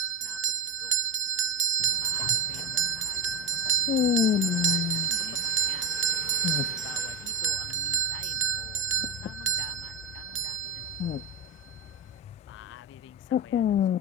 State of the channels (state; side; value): normal; both; correlation 0.18